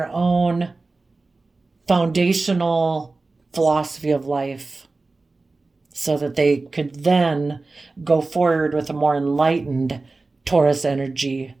own foundational philosophy of life, so that they could then go forward with a more enlightened Taurus energy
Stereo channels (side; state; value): left; quieter; 3.5 dB